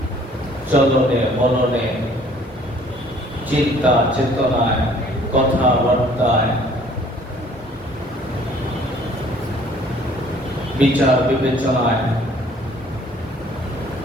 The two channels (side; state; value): both; normal; correlation 0.57